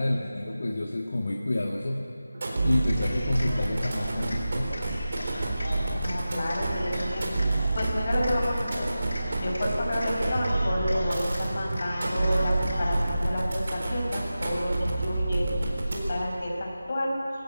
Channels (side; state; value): both; inverted; correlation -0.93